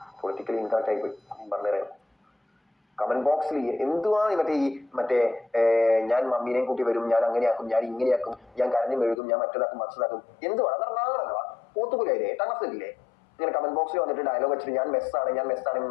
politically incorrect ആയി പോയി പറഞ്ഞുതരാം. കമന്റ് ബോക്സിൽ എന്തുവാ മറ്റേ ഞാൻ മമ്മീനെയും കൂട്ടി വരും, ഞാൻ അങ്ങനെയാക്കും, ഞാൻ ഇങ്ങനെയാക്കും, ഞാൻ കരഞ്ഞു മെഴുകും, ഞാൻ മറ്റേതാക്കും മറിച്ചതാക്കും, എന്തുവാണ് അതെന്നാണല്ലോ പോത്തുപോലെയല്ലേ 8ാം ക്ലാസ്സിലില്ലേ ഇങ്ങനെ കമന്റ് ബോക്സിൽ വന്നിട്ട് ഡയലോഗ് വെച്ചിട്ട് ഞാൻ മെസ്സാണെന്ന്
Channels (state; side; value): drops out; right; at 9.2 s